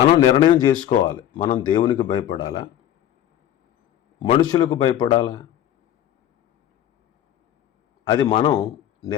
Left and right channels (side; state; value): right; quieter; 11.4 dB